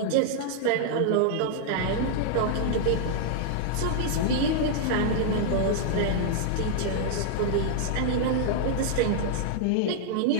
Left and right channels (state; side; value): different; both; correlation -0.01